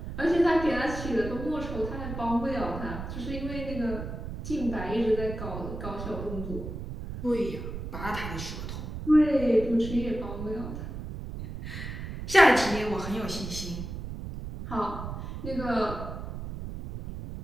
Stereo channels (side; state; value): right; noise; rumble, 7 dB below the sound